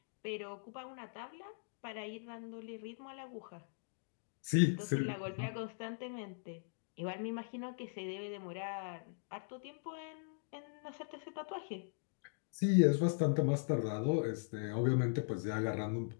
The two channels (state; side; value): silent; right; digital silence